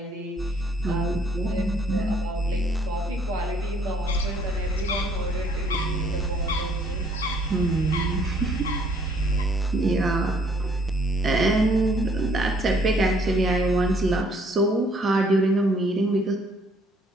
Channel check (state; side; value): normal; both; correlation 0.64